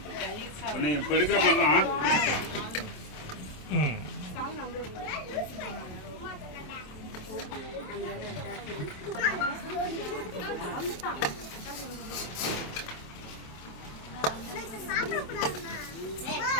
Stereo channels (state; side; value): late; right; 27 ms